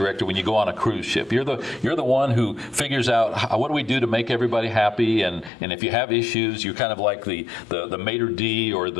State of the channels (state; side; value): drops out; right; at 5.5 s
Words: when you go on a cruise ship. You're the one who figures out what do we do to make everybody happy, and if you have issues, you're kind of like the maitre d' or